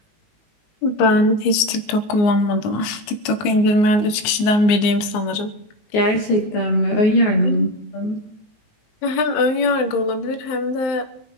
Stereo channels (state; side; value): late; right; 19 ms